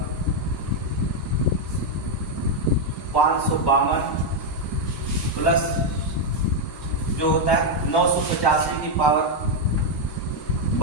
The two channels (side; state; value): both; normal; correlation 0.00